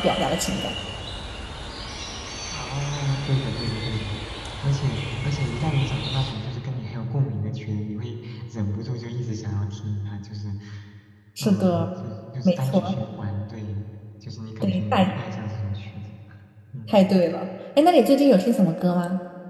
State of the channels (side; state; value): both; identical; correlation 1.00